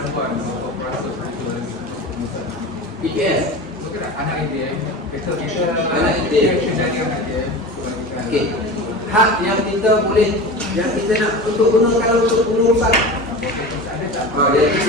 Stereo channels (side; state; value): both; normal; correlation 0.31